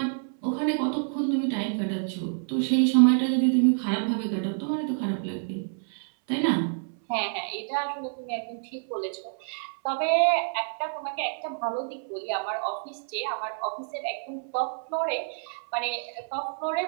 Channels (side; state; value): left; silent; 59 dB below the other